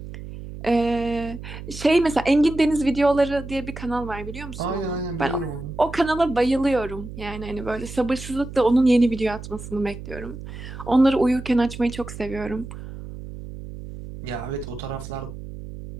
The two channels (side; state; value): right; noise; hum, 11 dB below the sound